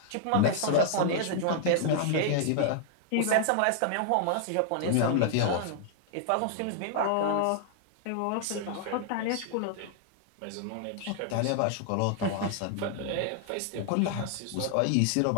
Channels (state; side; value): different; both; correlation -0.01